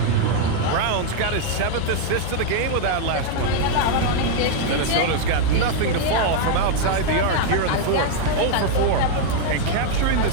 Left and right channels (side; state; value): both; different; correlation 0.00